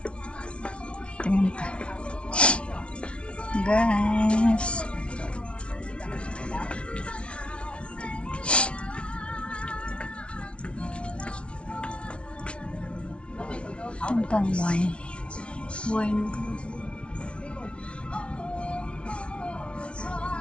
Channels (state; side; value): late; right; 0.060 ms